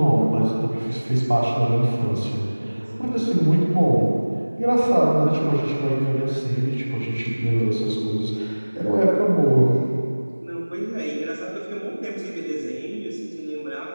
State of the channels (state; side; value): inverted; both; correlation -1.00